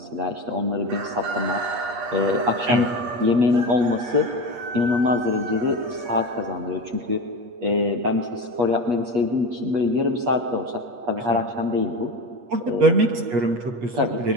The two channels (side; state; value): left; late; 8.4 ms